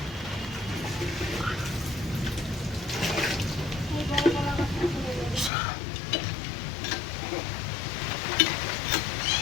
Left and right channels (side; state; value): right; drops out; at 5.5 s